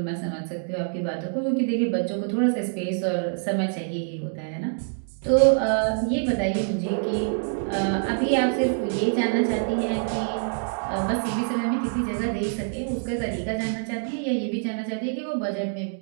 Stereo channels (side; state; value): left; silent; digital silence